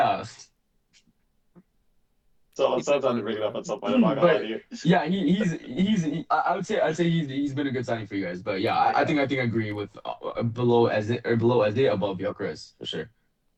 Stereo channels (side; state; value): both; identical; correlation 1.00